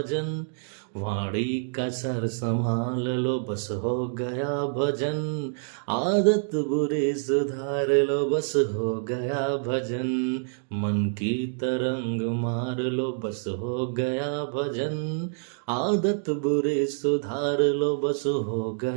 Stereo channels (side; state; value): left; silent; digital silence